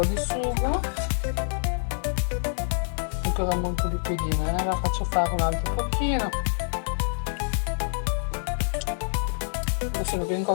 di sugo. Ancora molto liquidina, la faccio fare un altro pochino. Adesso sono ben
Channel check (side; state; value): right; silent; digital silence